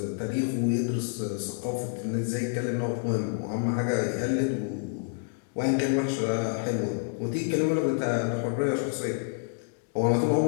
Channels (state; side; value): silent; right; digital silence